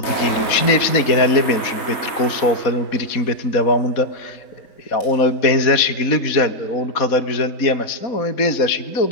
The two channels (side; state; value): right; late; 4.1 ms